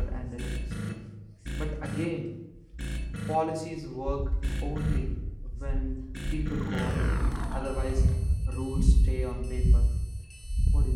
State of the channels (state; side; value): identical; both; correlation 1.00